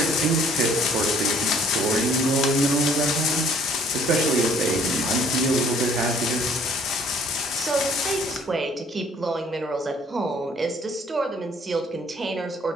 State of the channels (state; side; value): normal; both; correlation 0.58